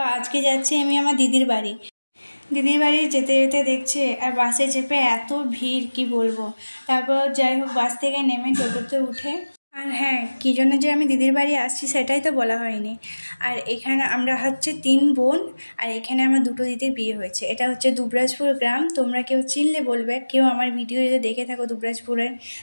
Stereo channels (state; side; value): inverted; both; correlation -1.00